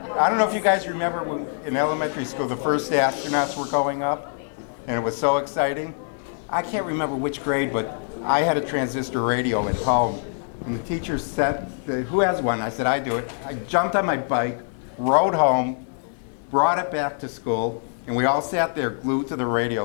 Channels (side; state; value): right; silent; digital silence